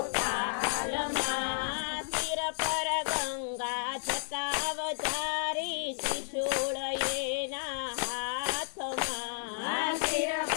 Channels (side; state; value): right; silent; digital silence